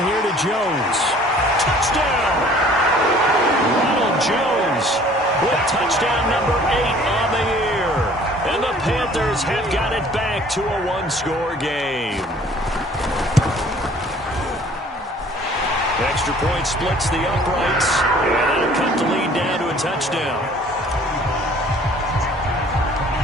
here to Jones. Touchdown! Ronald Jones with touchdown number 8 on the year. And the Panthers have got it back to a one-score game. Extra point splits the uprights, and that'll cut the lead down to a touchdown.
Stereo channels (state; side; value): normal; both; correlation 0.53